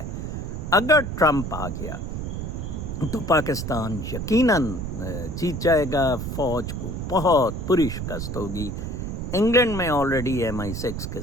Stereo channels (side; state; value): right; noise; rumble, 5 dB below the sound